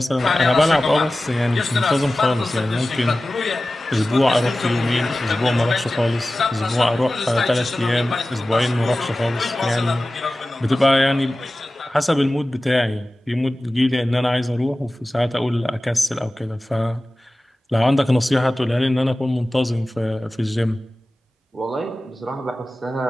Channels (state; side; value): normal; both; correlation 0.96